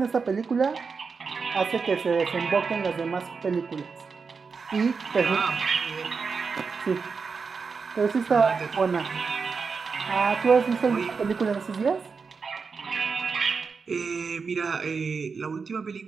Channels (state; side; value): quieter; left; 5.1 dB